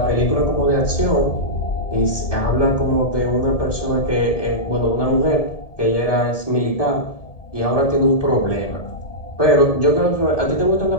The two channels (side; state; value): right; late; 1.7 ms